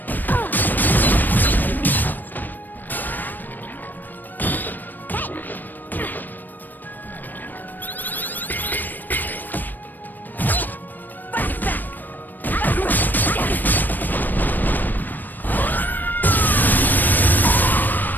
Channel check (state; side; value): late; right; 0.090 ms